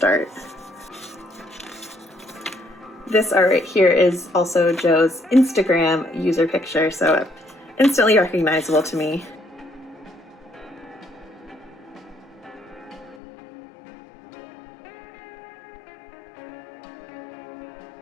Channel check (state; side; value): drops out; right; at 13.2 s